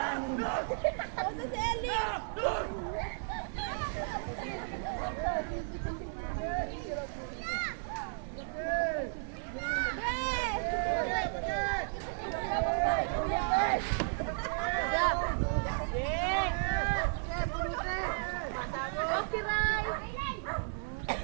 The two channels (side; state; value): left; silent; digital silence